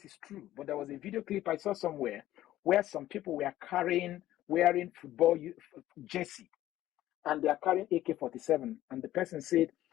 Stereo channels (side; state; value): right; quieter; 14.1 dB